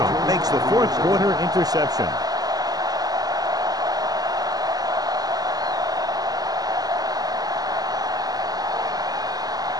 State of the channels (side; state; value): left; late; 0.18 ms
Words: makes the fourth quarter interception.